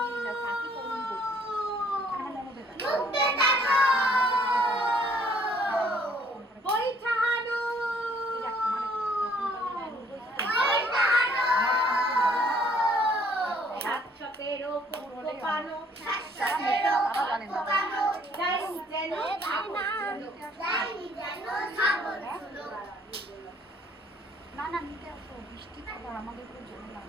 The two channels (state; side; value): normal; both; correlation 0.61